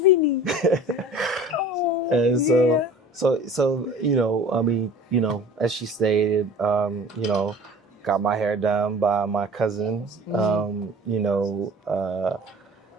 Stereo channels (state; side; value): normal; both; correlation 0.43